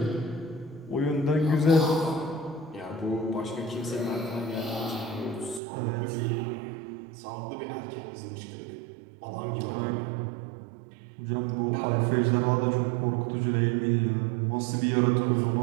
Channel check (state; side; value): drops out; left; at 5.6 s